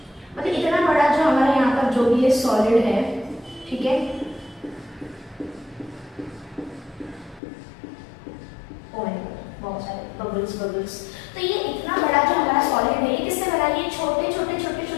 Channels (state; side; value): drops out; right; at 7.4 s